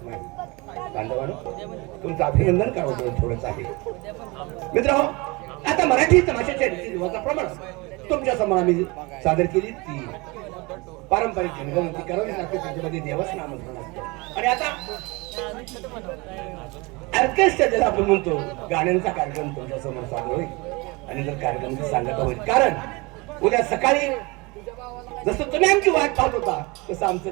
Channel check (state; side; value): quieter; left; 25.7 dB